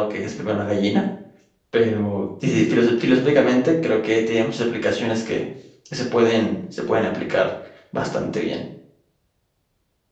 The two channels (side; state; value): both; identical; correlation 1.00